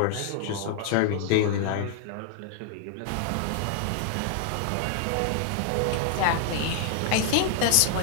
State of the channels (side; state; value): both; different; correlation 0.00